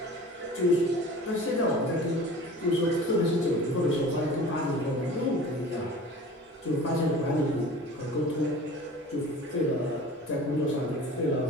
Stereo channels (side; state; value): both; normal; correlation 0.41